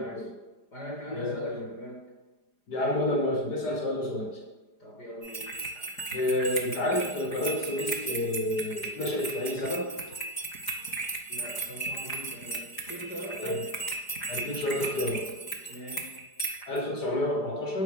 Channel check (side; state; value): right; late; 4.9 ms